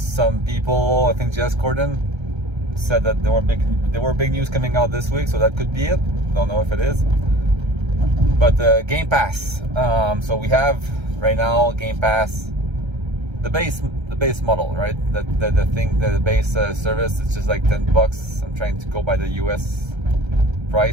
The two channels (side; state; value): left; late; 1.3 ms